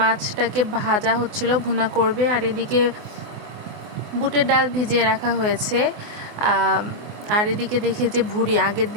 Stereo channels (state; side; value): late; left; 24 ms